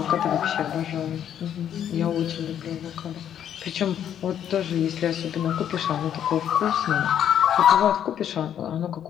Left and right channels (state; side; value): quieter; right; 9.7 dB